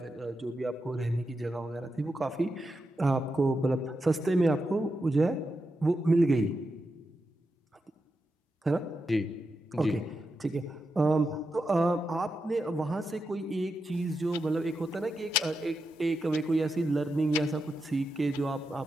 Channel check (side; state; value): both; normal; correlation 0.87